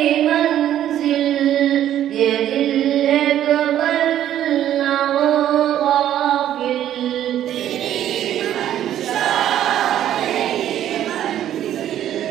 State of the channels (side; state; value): left; quieter; 11.5 dB